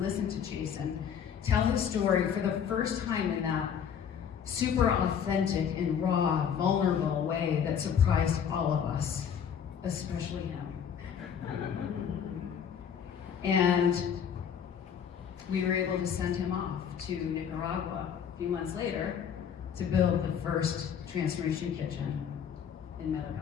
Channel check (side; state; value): right; quieter; 7.9 dB